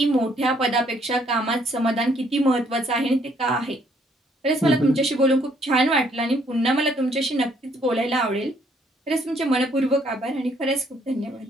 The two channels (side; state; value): both; normal; correlation 0.66